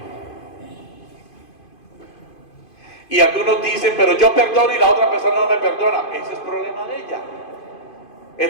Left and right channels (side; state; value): right; late; 2.5 ms